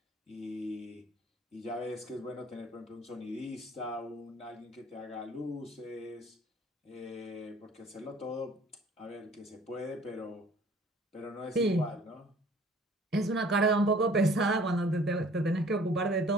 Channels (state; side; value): normal; both; correlation 0.53